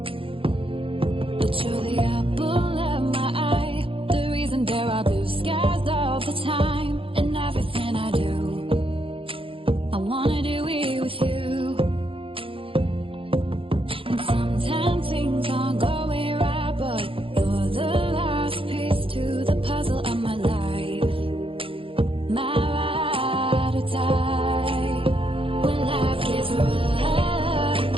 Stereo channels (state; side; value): late; left; 0.26 ms